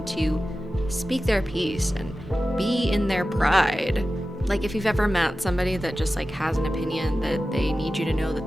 to speak their piece and be in their pride. Like if you've ever met somebody that just like has an opinion that they need you to know that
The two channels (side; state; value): both; normal; correlation 0.94